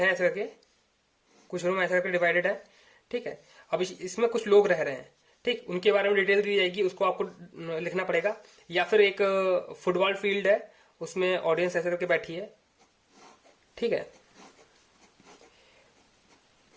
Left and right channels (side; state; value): both; identical; correlation 1.00